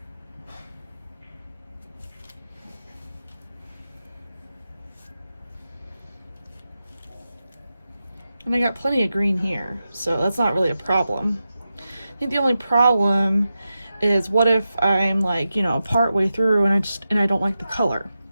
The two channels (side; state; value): both; inverted; correlation -0.91